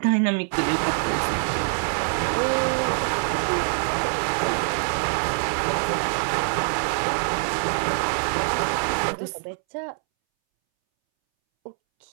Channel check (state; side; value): silent; left; 62 dB below the other